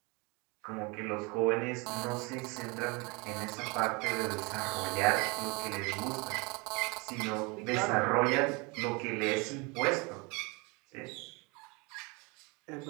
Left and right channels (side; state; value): left; quieter; 28.4 dB